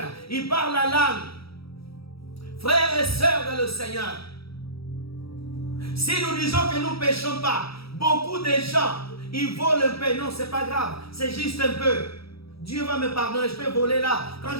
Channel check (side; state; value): right; late; 0.76 ms